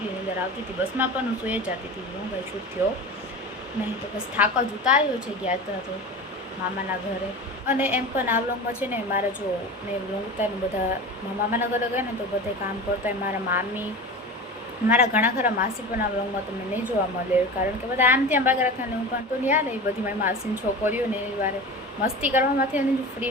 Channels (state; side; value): normal; both; correlation 0.31